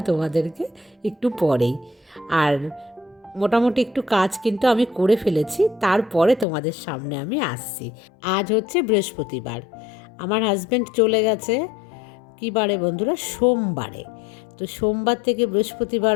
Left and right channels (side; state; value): right; drops out; at 6.5 s